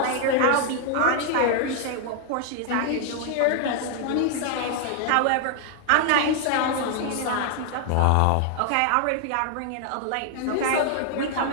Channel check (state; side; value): different; both; correlation 0.00